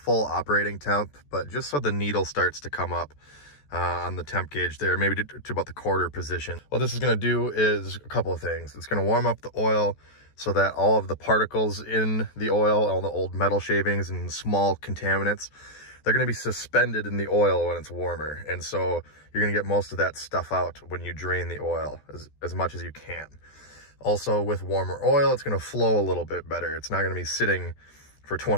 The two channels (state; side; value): late; right; 14 ms